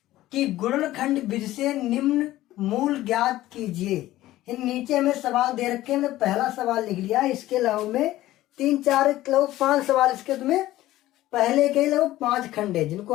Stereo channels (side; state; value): right; quieter; 15.5 dB